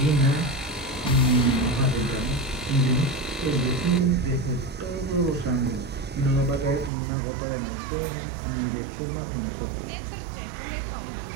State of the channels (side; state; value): left; drops out; at 6.9 s